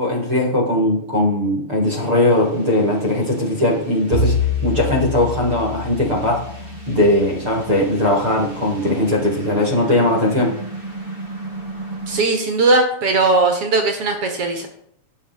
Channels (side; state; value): left; late; 7.3 ms